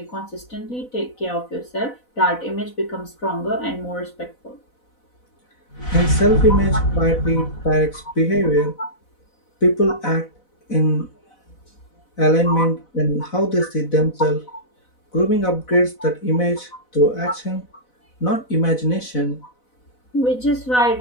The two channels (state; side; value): late; right; 4.0 ms